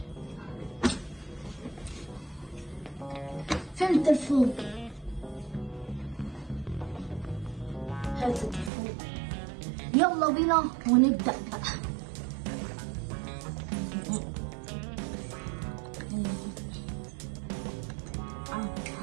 فين التليفون؟ هات التليفون يلا بينا ونبدأ بقى.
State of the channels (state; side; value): drops out; left; at 8.7 s